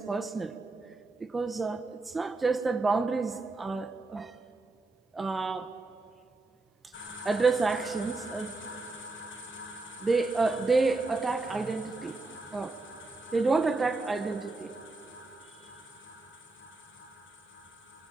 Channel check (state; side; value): quieter; left; 3.4 dB